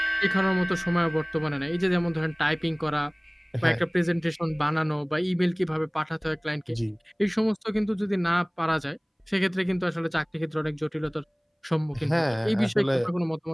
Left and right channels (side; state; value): both; identical; correlation 1.00